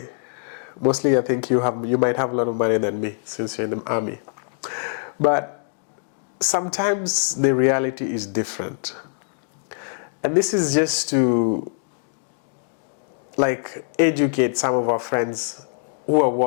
Mostly I think you might have a lot of money than me since you're in the army. But sometimes the reality is different. And this is just to like educate some of our friends who are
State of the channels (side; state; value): right; silent; digital silence